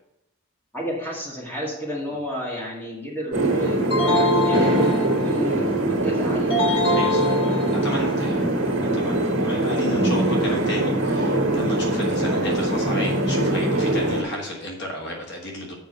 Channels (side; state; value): both; normal; correlation 0.24